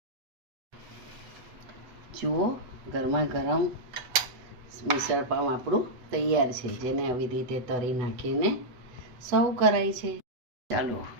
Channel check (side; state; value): left; late; 8.6 ms